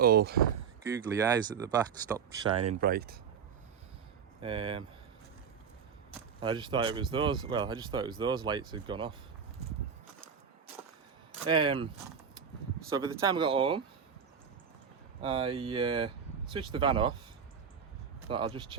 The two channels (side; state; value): left; quieter; 6.9 dB